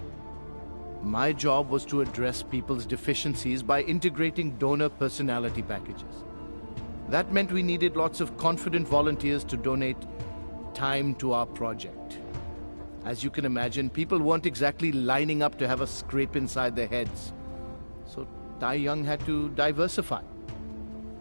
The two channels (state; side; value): inverted; both; correlation -1.00